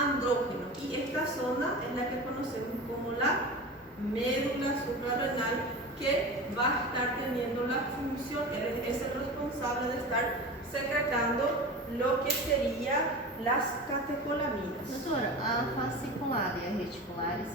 Y esta zona es la que conocemos como la médula suprarrenal, que va a estar teniendo la función, es el responsable de estar secretando lo que sería las catecolaminas. Doutora, a fasciculada e a reticulares,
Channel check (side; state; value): both; normal; correlation 0.31